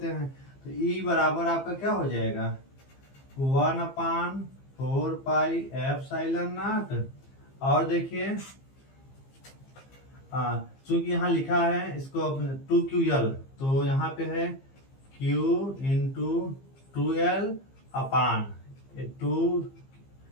हैं। तो E बराबर आपका क्या हो जाएगा 1/4πε0 और देखिए चूंकि यहाँ लिखा है इसको 2QL तो यहाँ पे है Q इंटू 2L अपान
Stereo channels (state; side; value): late; right; 15 ms